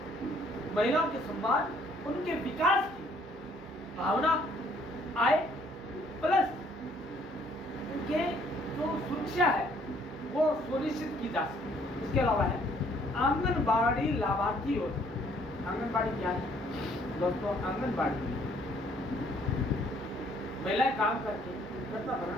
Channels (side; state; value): both; normal; correlation 0.63